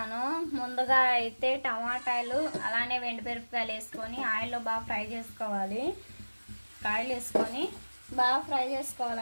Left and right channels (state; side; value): inverted; both; correlation -1.00